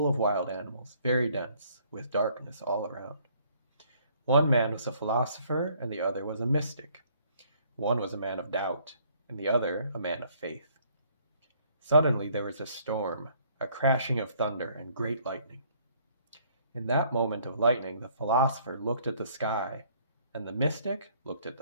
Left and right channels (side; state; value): both; inverted; correlation -0.63